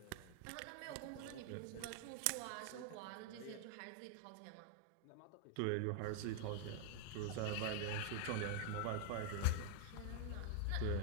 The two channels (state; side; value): different; both; correlation 0.00